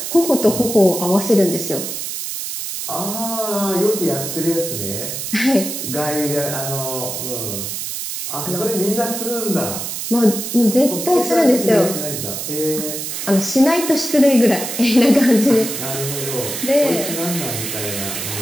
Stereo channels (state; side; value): noise; right; hiss, 5 dB below the sound